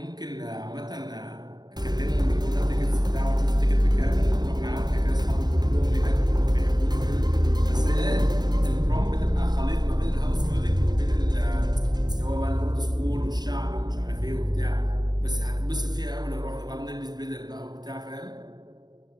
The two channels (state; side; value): late; left; 0.20 ms